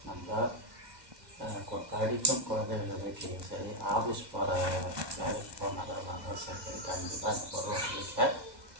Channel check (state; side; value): late; left; 2.0 ms